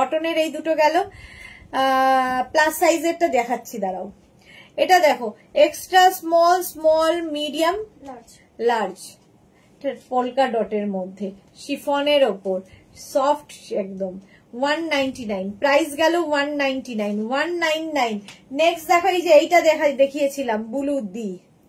এই দুটো গেল। প্লাস সাইজেরটা দেখাচ্ছি, দাঁড়াও। এটা দেখো, extra small, small, medium, large, polka ডটের মধ্যে, শিফনের ওপর, সফট একদম, 199 প্রাইস গেল 199, 199। নেক্সট দেখো, এই যে এইটা দেখিয়েছিলাম ব্লু দি,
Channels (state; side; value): identical; both; correlation 1.00